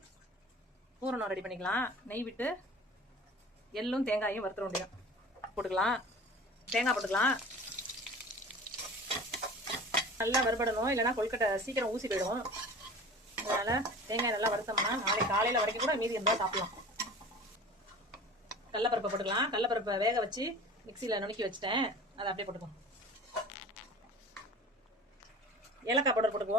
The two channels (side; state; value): both; normal; correlation 0.40